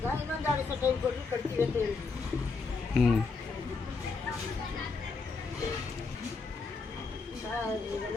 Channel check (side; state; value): right; quieter; 4.4 dB